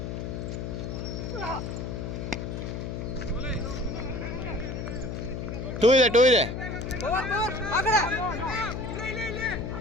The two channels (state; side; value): noise; left; hum, 5 dB below the sound